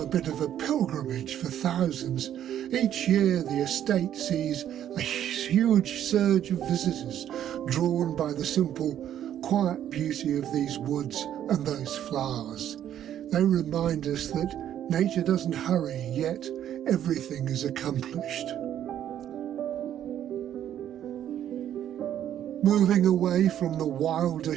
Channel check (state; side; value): quieter; left; 10.7 dB